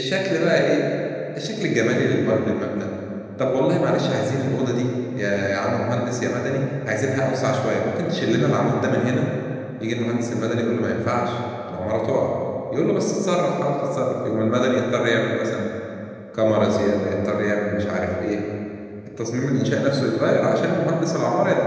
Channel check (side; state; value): both; identical; correlation 1.00